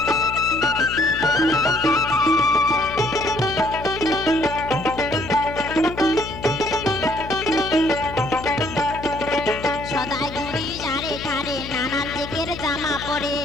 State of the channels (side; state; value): left; noise; hum, 11 dB below the sound